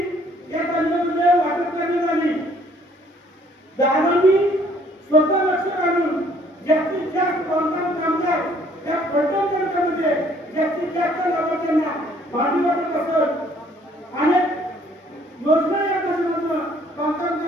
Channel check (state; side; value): normal; both; correlation 0.61